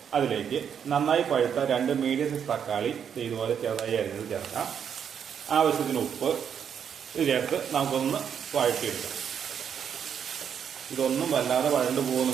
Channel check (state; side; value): quieter; left; 8.0 dB